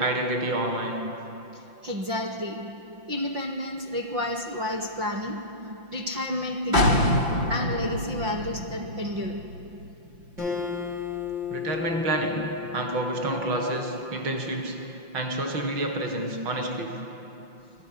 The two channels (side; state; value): left; late; 5.8 ms